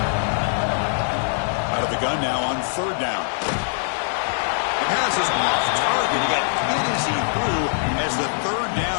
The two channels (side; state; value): right; silent; 64 dB below the other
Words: Out of the gun now on third down. The pass is off target. He got hit as he threw as the third